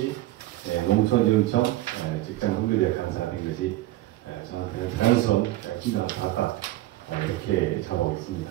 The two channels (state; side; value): quieter; left; 16.3 dB